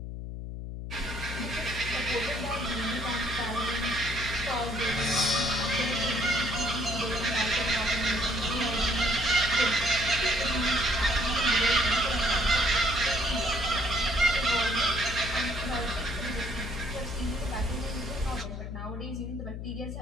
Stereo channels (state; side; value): noise; left; hum, 7 dB below the sound